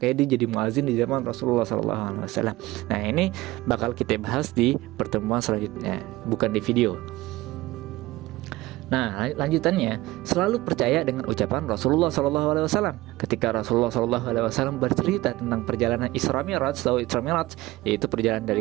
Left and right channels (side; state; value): left; quieter; 18.6 dB